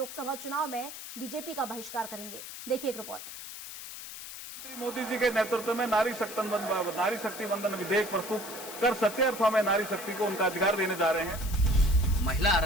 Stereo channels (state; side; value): noise; left; hiss, 11 dB below the sound